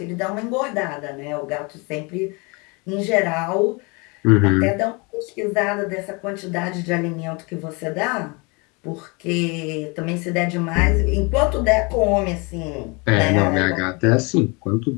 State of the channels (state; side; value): quieter; right; 29.3 dB